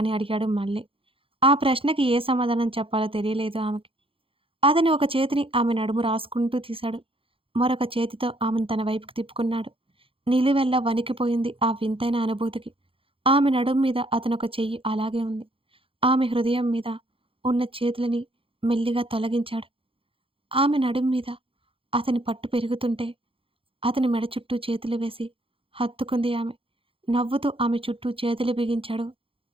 అడిగాడు మళ్ళీ. ఆ ప్రశ్నకి ఏ సమాధానం చెప్పాలో తెలియలేదు ఆమెకి. అతని ఒక చేతిని ఆమె నడుము రాసుకుంటూ తీశాడు. మరొక చేతితో ఆమెను తన వైపుకి తిప్పుకున్నాడు. నిలువెల్లా వణికిపోయింది ఆ వింతైన అనుభూతికి. ఆమె నడుం మీద అతనొక చెయ్యి అలాగే ఉంది. ఆమె హృదయం మీద ఉన్న చేతులని మెల్లిగా తొలగించాడు. ఆమె నడుం మీద అతని పట్టు పెరుగుతుంటే అతని మెడ చుట్టూ చేతులు వేసి హత్తుకుంది ఆమె. నవ్వుతూ ఆమె చుట్టూ చేతులు బిగించాడు.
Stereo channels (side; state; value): left; late; 0.26 ms